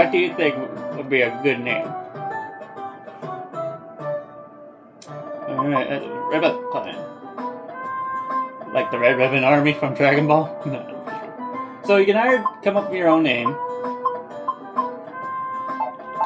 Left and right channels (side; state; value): both; identical; correlation 1.00